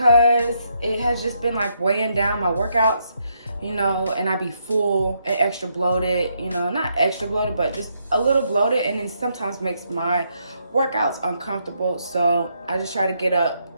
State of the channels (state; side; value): inverted; both; correlation -0.77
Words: it has just been like weighing down my workouts, and I be full and extra bloated, not extra bloated, but just a little bloated, and it sometimes makes my workouts uncomfortable. So I just try to get up